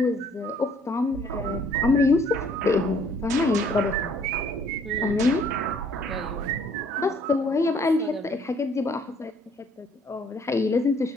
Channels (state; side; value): normal; both; correlation 0.61